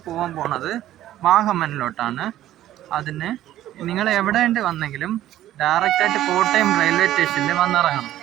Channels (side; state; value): left; quieter; 13.3 dB